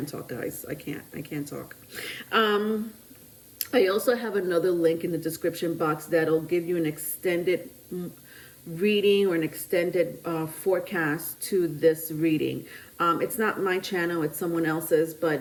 talk, guys. I can't talk. I also have another link in the description box that'll give you an extended reading or an extended forecast to this reading. It's not my channel, it's someone else's,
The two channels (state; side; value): identical; both; correlation 1.00